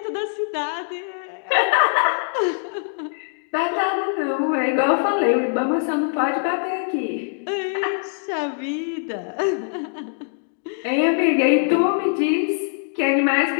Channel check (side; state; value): right; silent; digital silence